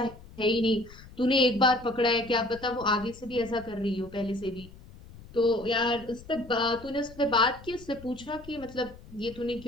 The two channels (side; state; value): left; noise; rumble, 19 dB below the sound